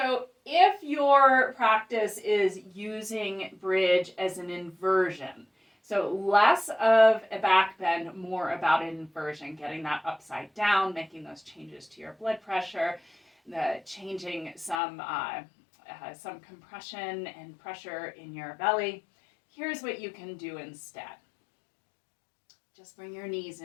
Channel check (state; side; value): drops out; right; at 14.8 s